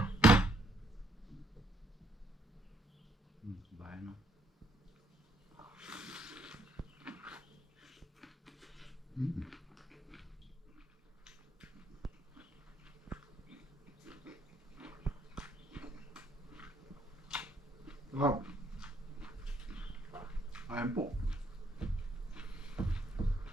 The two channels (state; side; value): normal; both; correlation 0.70